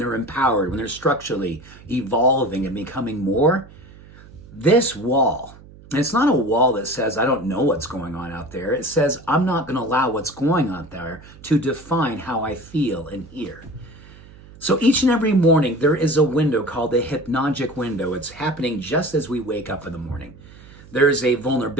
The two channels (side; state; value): right; noise; hum, 21 dB below the sound